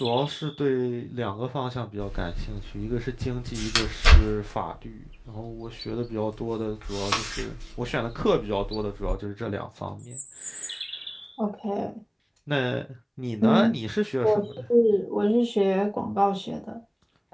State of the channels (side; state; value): both; identical; correlation 1.00